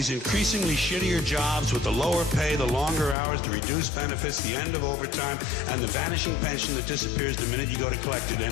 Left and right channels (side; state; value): right; drops out; at 3.2 s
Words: increasingly shittier jobs with the lower pay, the longer hours, the reduced benefits, the end of overtime, and the vanishing pension that disappears the minute you go to collect it.